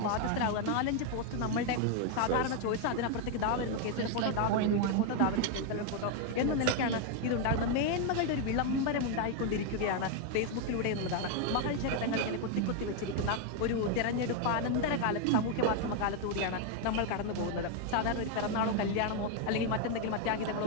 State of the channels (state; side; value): different; both; correlation 0.01